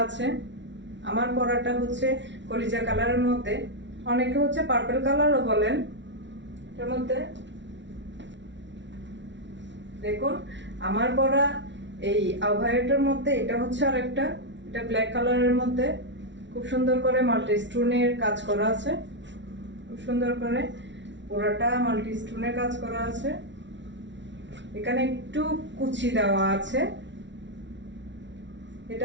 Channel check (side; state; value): left; late; 0.53 ms